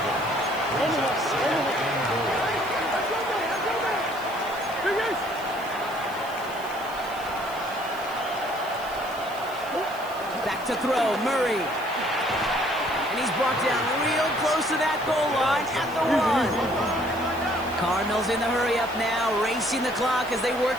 Back to throw, Murray. And he's brought down real close to that goal line at the 1. Cardinals in the hurry up now, racing the clock as they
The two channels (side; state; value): right; noise; hiss, 19 dB below the sound